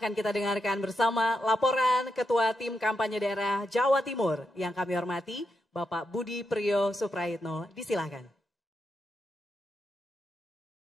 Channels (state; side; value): normal; both; correlation 0.84